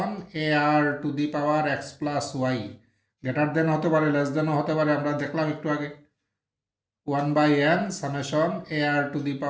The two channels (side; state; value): both; identical; correlation 1.00